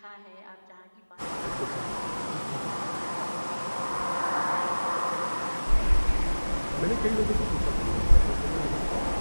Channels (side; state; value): both; inverted; correlation -1.00